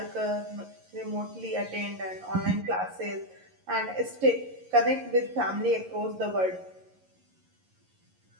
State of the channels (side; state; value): left; late; 11 ms